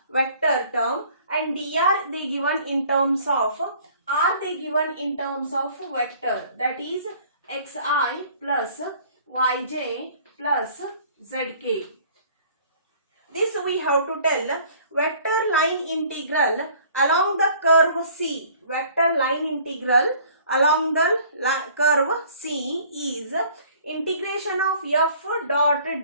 vector term and dr they given in terms of r they given in terms of vector, that is xi plus yj plus zk. This we have to tell vector line integral along the curve C. Vector line integral along the curve C is integration of f dot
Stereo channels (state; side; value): inverted; both; correlation -0.53